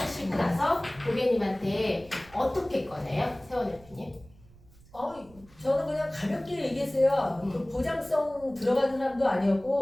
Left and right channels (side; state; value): right; noise; rumble, 25 dB below the sound